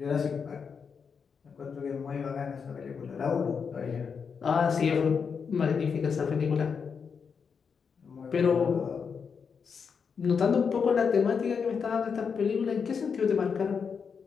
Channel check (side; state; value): right; quieter; 6.1 dB